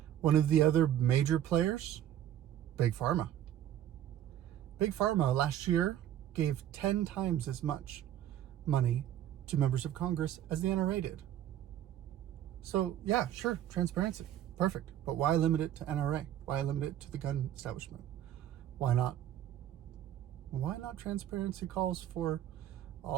One of the other major players, Big Pharma. Big Pharma last year gave 10 times as much money to members of Congress as the NRA did. So yeah, sure, transparency, perfect. But why limit it to NRA? Why limit it to the gun establishment? Why not? Why not transparency calls for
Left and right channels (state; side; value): quieter; left; 11.4 dB